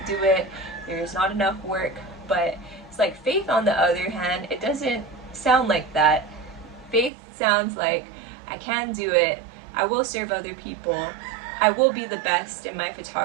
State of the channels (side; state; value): left; drops out; at 7.1 s